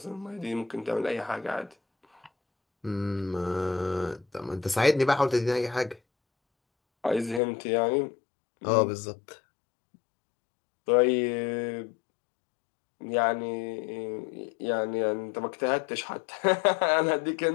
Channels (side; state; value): right; drops out; at 7.4 s